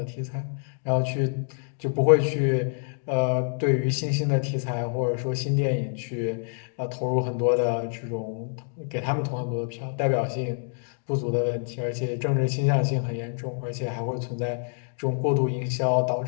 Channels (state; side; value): silent; right; 60 dB below the other